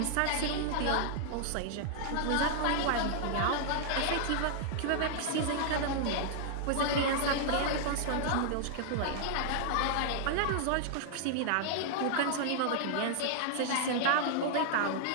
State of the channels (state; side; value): different; both; correlation -0.01